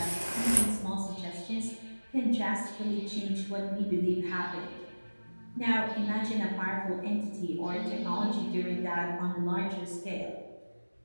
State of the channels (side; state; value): both; inverted; correlation -1.00